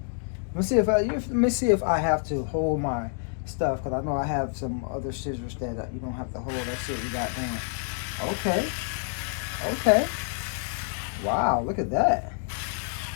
Let me see if I have to hold my stuff, because I know I have some other scissors that you don't have to hold. Let's see what we got going. Okay. Wow, look at that.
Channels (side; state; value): right; silent; 60 dB below the other